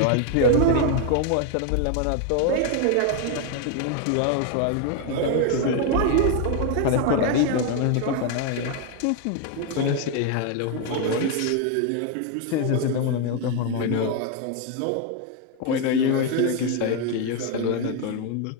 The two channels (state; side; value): different; both; correlation 0.01